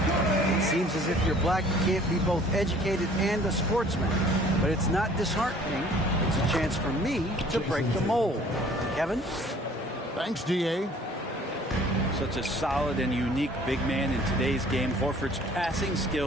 seems as if you're black, you can't be both educated and a sportsman. But it's not disheartening. It's a chance for me to break the mold. Kevin? Thanks, DA. Such a solid and unique big man in today's game. Horford's passing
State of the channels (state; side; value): normal; both; correlation 0.53